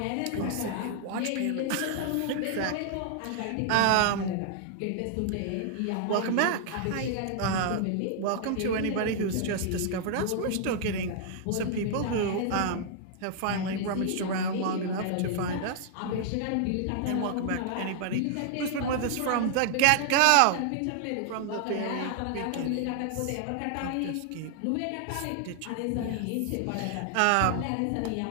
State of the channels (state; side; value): different; both; correlation -0.01